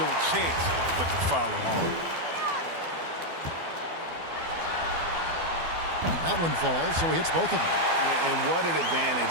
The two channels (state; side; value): late; left; 12 ms